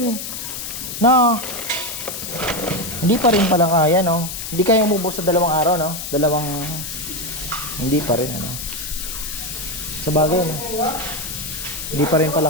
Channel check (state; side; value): noise; left; hiss, 7 dB below the sound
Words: no? Hindi pa rin pala kaya, no? Hindi kaya umubos sa 2 araw, no? Hindi pa rin, sa bagay, no? Hindi pa rin pala